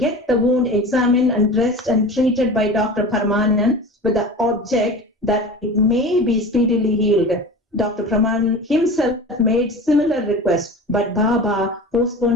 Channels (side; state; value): both; normal; correlation 0.34